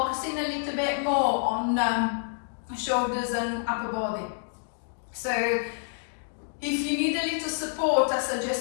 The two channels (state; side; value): silent; right; digital silence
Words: a little bit more on shoulders and upper body. So if you need a little support, I